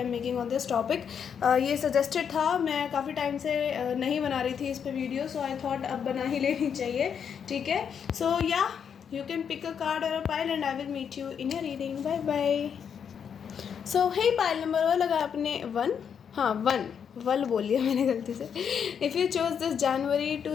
am making on this topic. ये सजेस्टेड था, मैं काफ़ी टाइम से नहीं बना रही थी इस पे वीडियो, सो आई थॉट अब बना ही लेनी चाहिए। ठीक है, सो या you can pick a card और a pile and I will meet you in your reading. Bye bye. So hey, pile number one लगा आपने 1, हाँ 1 वल बोलिए मैंने गलती से। If you choose this January to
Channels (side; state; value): right; quieter; 7.5 dB